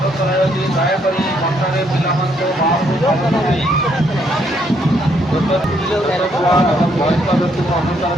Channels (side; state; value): both; normal; correlation 0.71